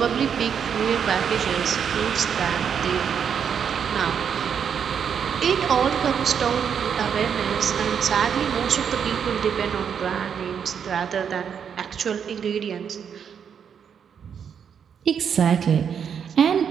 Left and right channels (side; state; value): left; quieter; 7.6 dB